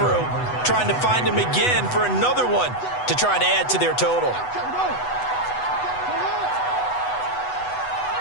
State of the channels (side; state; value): right; late; 8.0 ms